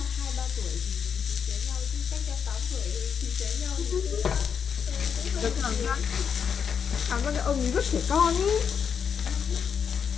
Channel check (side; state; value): right; quieter; 7.0 dB